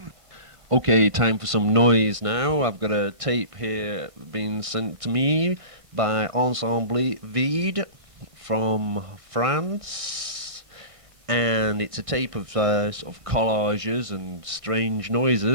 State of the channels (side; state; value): left; late; 1.6 ms